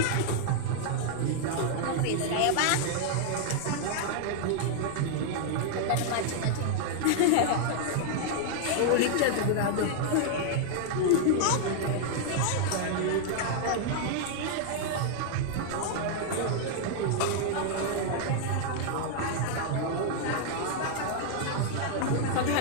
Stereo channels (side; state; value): both; different; correlation -0.01